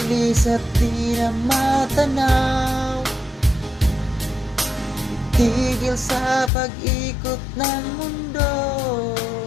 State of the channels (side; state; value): right; drops out; at 6.5 s